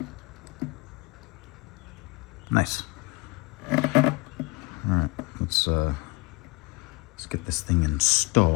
Nice. All right, let's get this thing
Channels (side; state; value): right; quieter; 25.4 dB